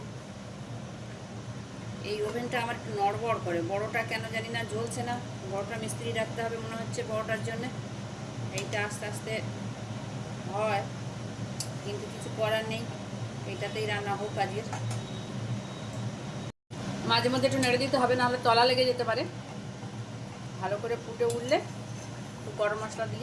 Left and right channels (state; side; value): identical; both; correlation 1.00